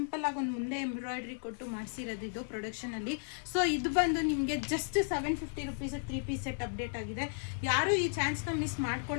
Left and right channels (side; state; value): right; silent; 55 dB below the other